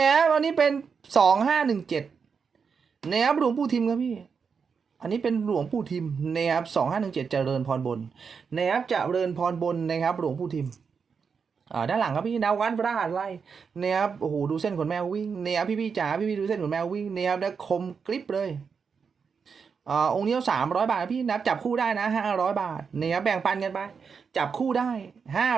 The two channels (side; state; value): left; quieter; 5.9 dB